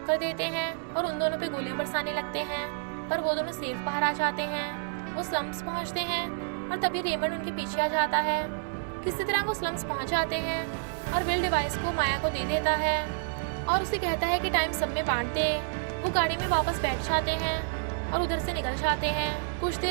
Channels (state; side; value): silent; left; digital silence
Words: कर देते हैं और उन दोनों पे गोलियां बरसाने लगते हैं, पर वो दोनों सेफ बाहर आ जाते हैं। वो स्लम्स पहुंचते हैं और तभी रेमंड उनके पीछे आ जाता है। किसी तरह वो स्लम्स पहुंच जाते हैं और विल डिवाइस को माया को दे देता है और उसे कहता है कि टाइम सब में बांट दे। वो गाड़ी में वापस बैठ जाते हैं और उधर से निकल जाते हैं। कुछ